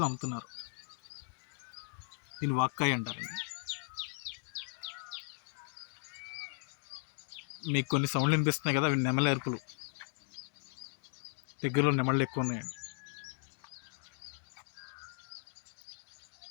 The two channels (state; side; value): silent; right; 53 dB below the other